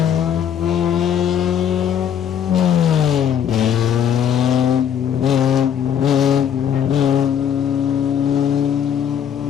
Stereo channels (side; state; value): right; quieter; 8.8 dB